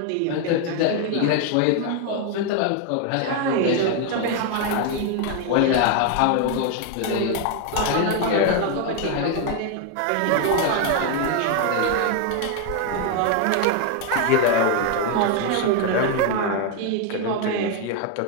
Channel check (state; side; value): different; both; correlation 0.01